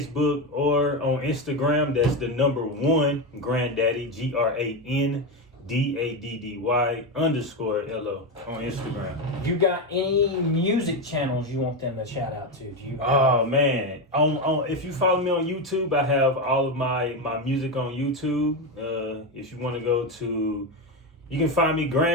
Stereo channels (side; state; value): both; normal; correlation 0.12